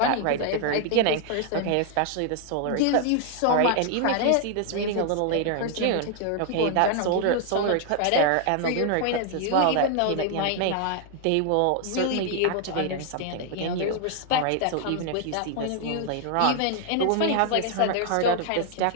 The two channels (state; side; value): different; both; correlation 0.00